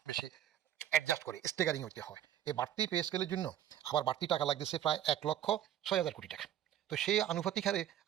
বেশি অ্যাডজাস্ট করে স্টেগারিং হইতে হয়। এই বাড়তি পে স্কেলের জন্য আবার বাড়তি টাকা লাগতেছে প্রায় 1,06,000 কোটি টাকা। তো সেই আনুপাতিক হারে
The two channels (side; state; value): left; quieter; 11.2 dB